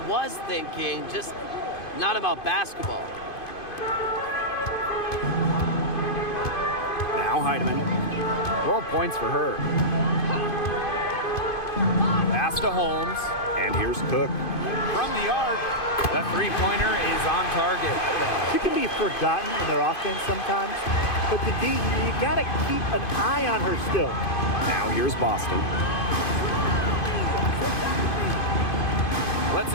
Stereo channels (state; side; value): late; right; 2.5 ms